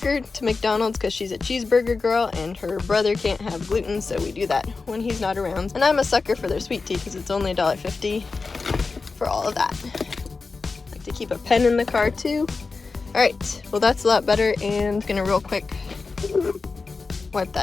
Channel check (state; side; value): quieter; right; 4.2 dB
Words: her to McDonald's because she's a cheeseburger girl and her brother can't have gluten, so we do that when he's not around. And I'm a sucker for their sweet tea because it's only $1.50 for all of that. I like to keep a pen in the car too. Alright, well that's a lot better, and I'm gonna real quick wipe